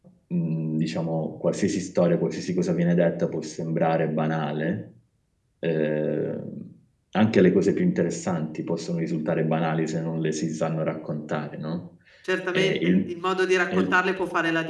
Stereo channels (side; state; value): both; identical; correlation 1.00